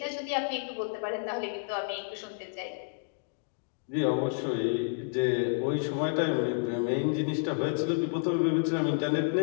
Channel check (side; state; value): right; silent; digital silence